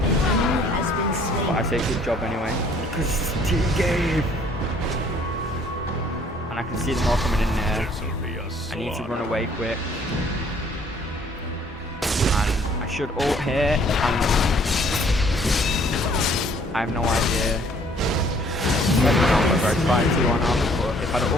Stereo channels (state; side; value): normal; both; correlation 0.59